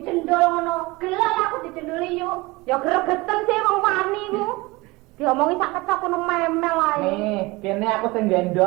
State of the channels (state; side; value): quieter; left; 22.6 dB